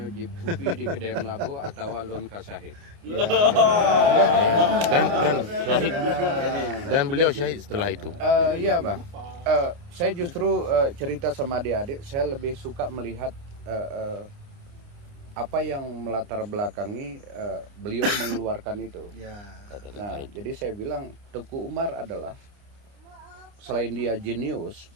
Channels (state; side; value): late; left; 29 ms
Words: jip kopi di kedai Melabu atau alun kasahid. Dan syahid, dan beliau syahid setelah itu. Iya Bang. Saya justru cerita sama adik-adik, saya lebih suka melihat apa yang melatar belakangi beliau mengeluarkan itu. Ya. Nah, jadi saya bilang Tengku Umar adalah, selain dia jenius,